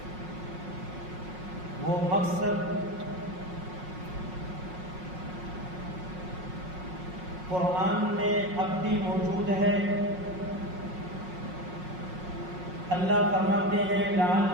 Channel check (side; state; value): left; late; 5.5 ms